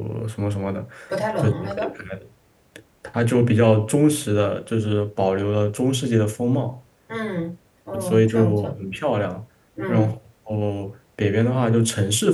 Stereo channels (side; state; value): both; identical; correlation 1.00